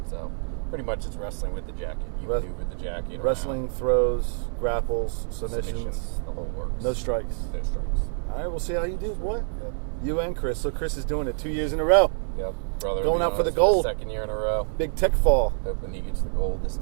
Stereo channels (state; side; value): silent; left; digital silence